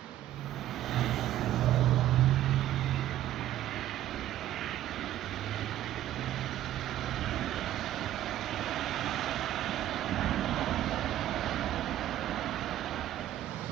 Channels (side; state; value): left; quieter; 12.9 dB